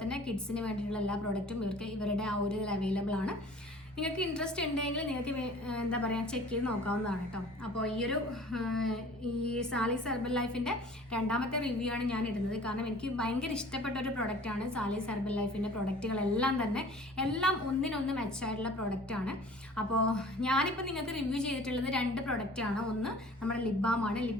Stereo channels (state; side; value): normal; both; correlation 0.47